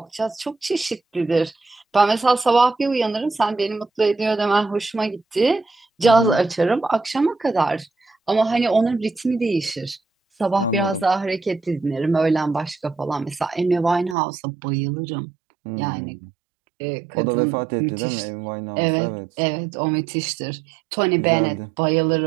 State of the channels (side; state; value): left; drops out; at 14.2 s